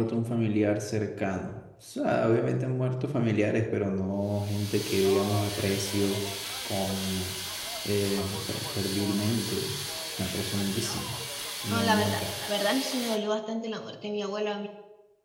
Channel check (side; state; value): both; identical; correlation 1.00